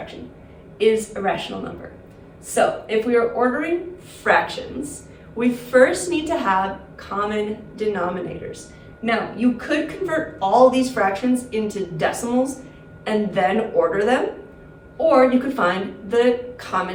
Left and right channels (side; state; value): both; identical; correlation 1.00